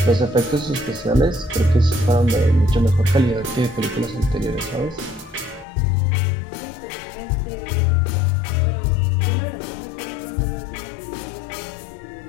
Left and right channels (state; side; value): drops out; right; at 5.7 s